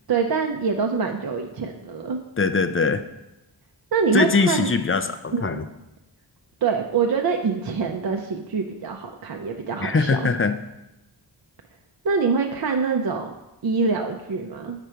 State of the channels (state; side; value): normal; both; correlation 0.08